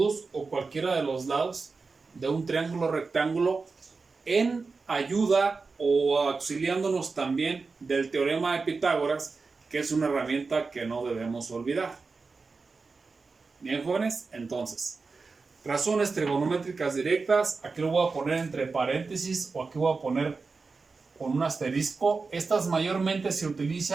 o cualquiera de los lados de un triángulo rectángulo, en ayuda o auxiliándonos también del teorema de Pitágoras, que es una herramienta que no debemos olvidar. Bien, jóvenes, entonces, razones trigonométricas directas, aquí lo voy a poner entre paréntesis o aquí voy a poner con un asterisco. Estas mayormente se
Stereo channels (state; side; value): quieter; left; 4.3 dB